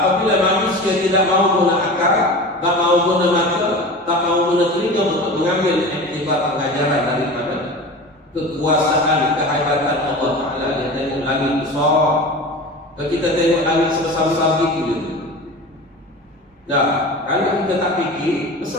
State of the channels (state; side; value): normal; both; correlation 0.33